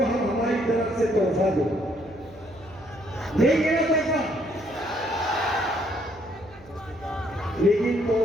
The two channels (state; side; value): noise; right; hum, 23 dB below the sound